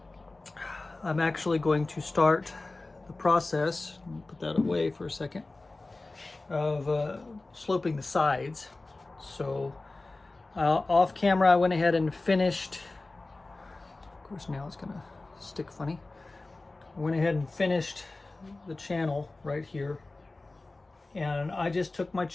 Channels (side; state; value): right; quieter; 3.2 dB